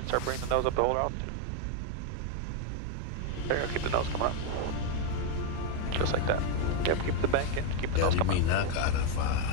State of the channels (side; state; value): both; different; correlation 0.01